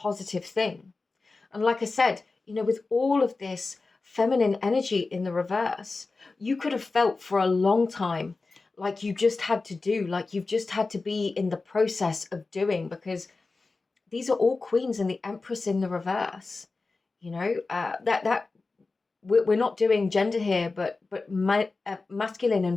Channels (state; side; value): quieter; right; 3.8 dB